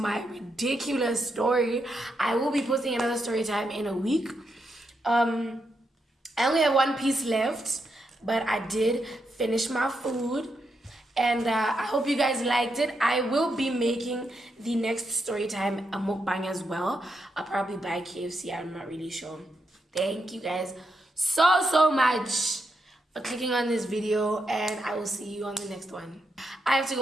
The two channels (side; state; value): both; normal; correlation 0.83